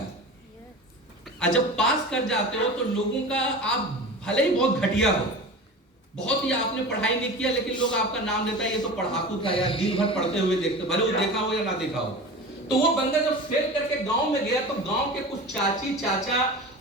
और जब पास कर जाते हो तो लोगों का, आप भले ही बहुत घटिया हो, बहुत ही आपने पढ़ाई नहीं किया, लेकिन लोग आपका नाम लेता है ये तो पढ़ाकू था यार, दिन भर पढ़ते हुए देखते, भले वो देखा हो या ना देखा हो। तो वो बंदा जब फेल करके गांव में गया तो गांव के कुछ चाची चाचा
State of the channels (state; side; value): normal; both; correlation 0.33